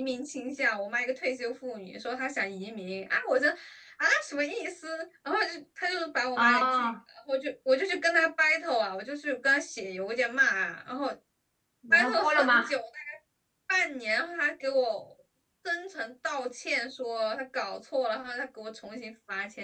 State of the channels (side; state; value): both; identical; correlation 1.00